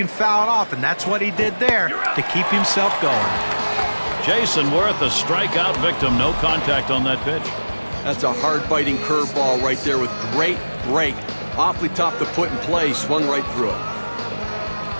foul it off, and that's what he did there to keep himself going. Jason Worth, a strikeout victim. No contact on that pitch. That's a hard-biting curveball right there with great break. Awfully tough to put in play. Swung right through it.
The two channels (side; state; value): both; inverted; correlation -1.00